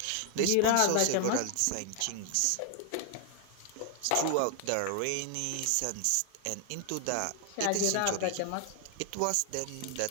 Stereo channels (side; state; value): both; different; correlation 0.00